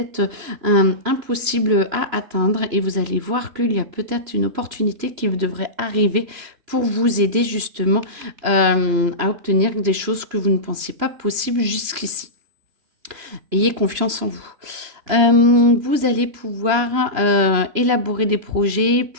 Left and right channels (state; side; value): late; left; 3.0 ms